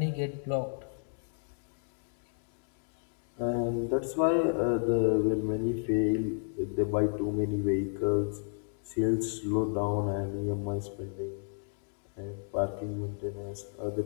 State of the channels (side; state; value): right; silent; 56 dB below the other